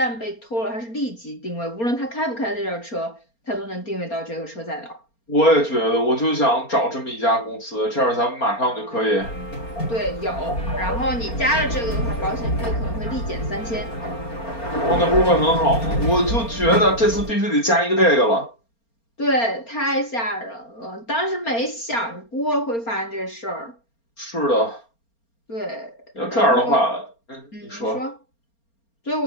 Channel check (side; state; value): right; late; 4.3 ms